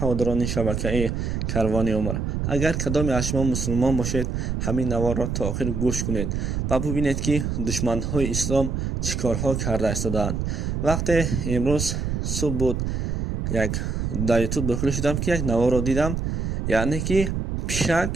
шабакаи Карвони Умр, агар кадоме аз шумо мусулмон бошед, ҳамин наворро то охир гӯш кунед ва бубинед ки душманҳои ислом чӣ корҳо карда истодаанд. Вақте имрӯз субҳ буд, дар ютуб дохил шудам ки як наворро дидам, яъне ки пишак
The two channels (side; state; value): right; noise; rumble, 1 dB below the sound